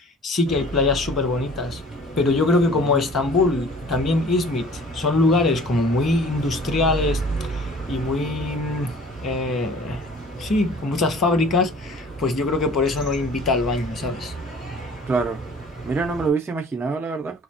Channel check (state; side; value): normal; both; correlation 0.49